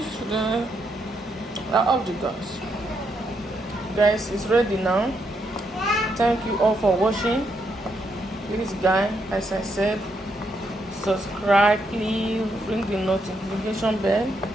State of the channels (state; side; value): normal; both; correlation 0.78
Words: then I off the gas. Guys, it's ready now. Thank you all for watching. Please, guys, as I said, subscribe, please, ring the notification bell,